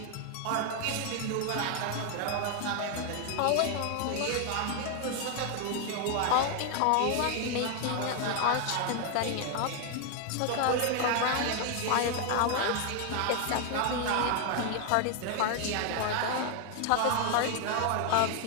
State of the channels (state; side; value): different; both; correlation 0.00